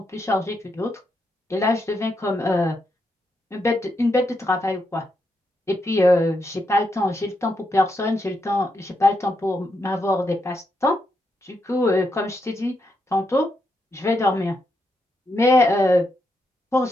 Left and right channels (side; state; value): both; normal; correlation 0.82